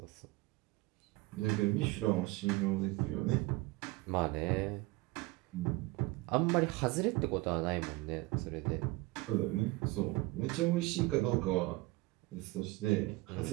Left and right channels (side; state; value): left; quieter; 21.4 dB